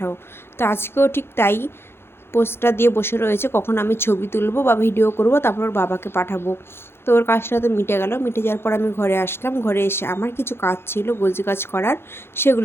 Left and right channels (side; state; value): right; late; 0.11 ms